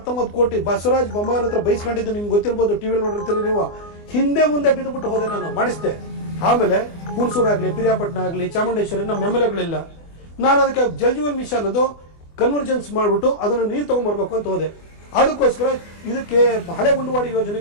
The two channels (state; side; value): late; right; 24 ms